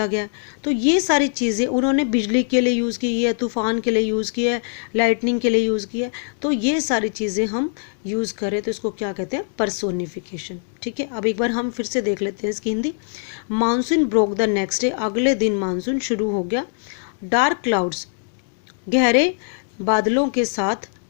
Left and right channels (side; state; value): right; silent; digital silence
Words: गया। तो ये सारी चीज़ें उन्होंने बिजली के लिए यूज़ की है, तूफान के लिए यूज़ किया है, लाइटनिंग के लिए यूज़ किया है। तो ये सारी चीज़ें हम यूज़ करें तो इसको क्या कहते हैं, पर्सोनिफिकेशन, ठीक है। अब एक बार हम फिर से देख लेते हैं इसकी Hindi. Monsoon broke the next day, अगले दिन मानसून शुरू हो गया। डार्क क्लाउड्स, गहरे बादलों के साथ,